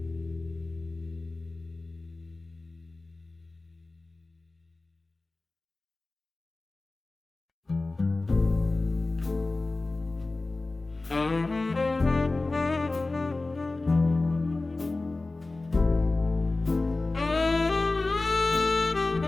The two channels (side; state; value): right; quieter; 3.2 dB